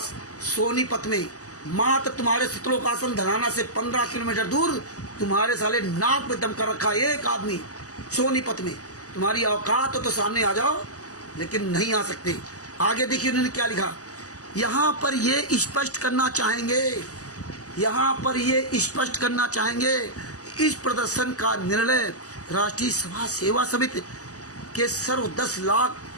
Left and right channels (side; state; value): right; late; 0.67 ms